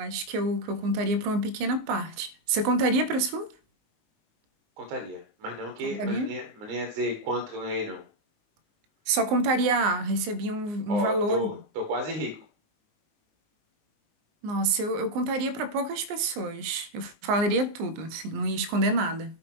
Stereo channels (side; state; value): left; late; 19 ms